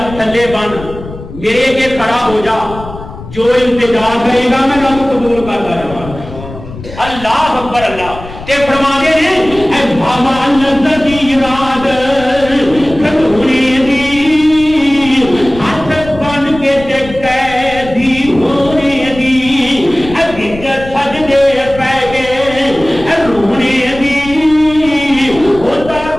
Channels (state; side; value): noise; left; rumble, 14 dB below the sound